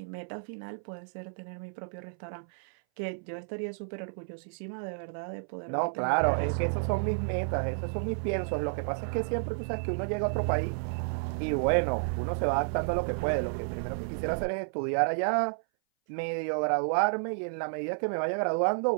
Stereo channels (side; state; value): left; silent; 57 dB below the other